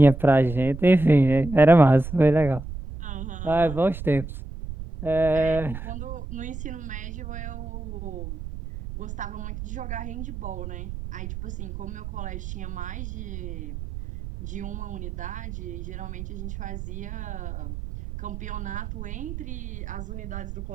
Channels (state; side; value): noise; right; rumble, 8 dB below the sound